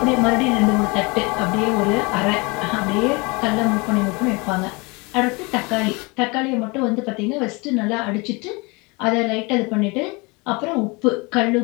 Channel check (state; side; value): quieter; right; 27.4 dB